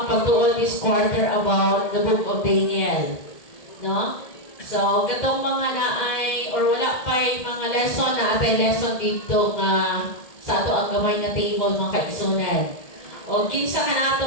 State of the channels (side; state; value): right; late; 1.8 ms